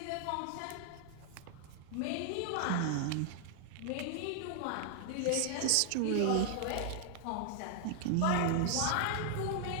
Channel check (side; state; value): both; different; correlation -0.01